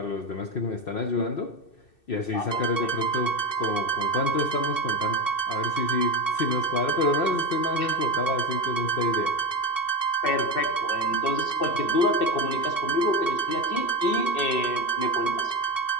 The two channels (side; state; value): right; late; 2.6 ms